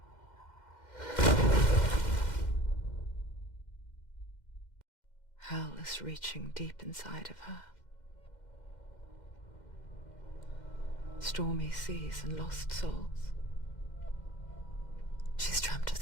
Hell is reaching deep inside of her. Stormy seas and lost souls. She's dreamt of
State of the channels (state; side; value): late; right; 2.1 ms